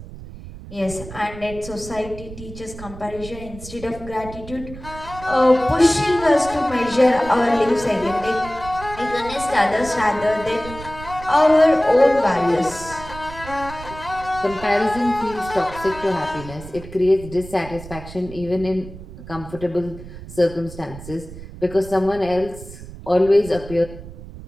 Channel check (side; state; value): right; noise; rumble, 14 dB below the sound